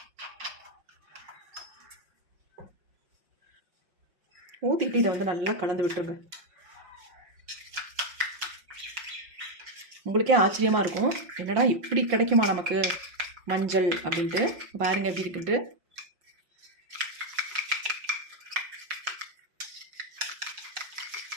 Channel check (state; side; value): late; left; 5.5 ms